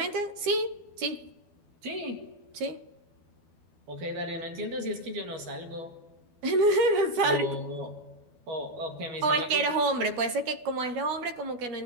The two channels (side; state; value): left; late; 12 ms